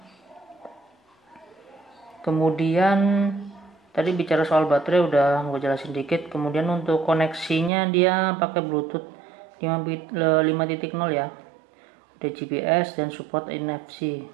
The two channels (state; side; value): drops out; left; at 7.7 s